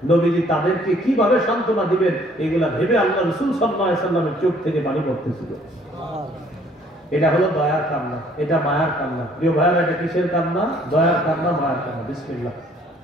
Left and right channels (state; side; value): normal; both; correlation 0.60